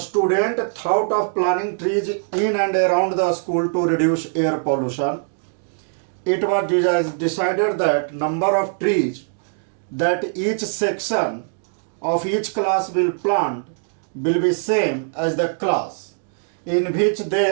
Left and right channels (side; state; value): left; silent; digital silence